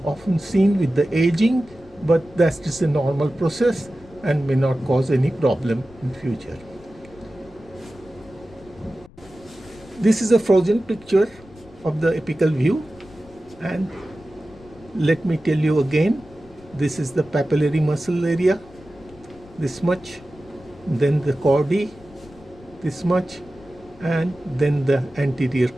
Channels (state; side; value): noise; left; rumble, 23 dB below the sound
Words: often seen with the aging, but that's just a normal process and may not cause any problem in future. This is a frozen picture of the apical view, and let me tell you again, this is the papillary muscle area, this much, then the chordae, this much, and then the anterior